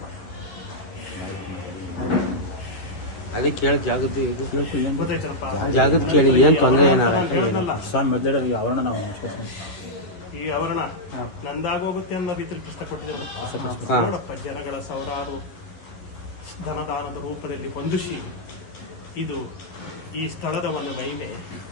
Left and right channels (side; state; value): right; late; 11 ms